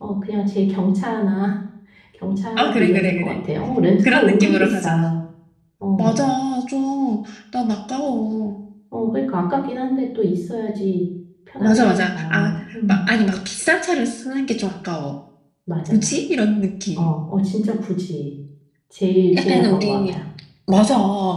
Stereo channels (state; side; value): identical; both; correlation 1.00